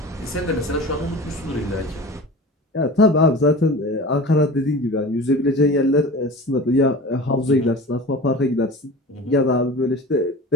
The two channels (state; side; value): normal; both; correlation 0.35